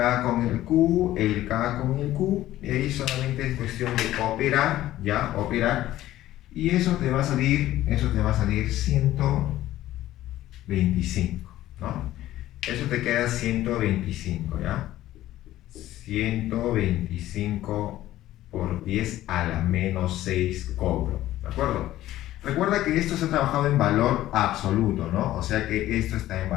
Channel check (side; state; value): right; quieter; 14.4 dB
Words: con el Q, el K con el Q, y ahí solamente es cuestión de operar, ya, operar. Y eso te va a salir 125, ¿no? Eso te queda 125, ¿ya? 125 por 10 a la menos 6 Coulomb, ¿de acuerdo? Recuerda que esto se ha trabajado en valor absoluto, ¿no? O sea que esto está en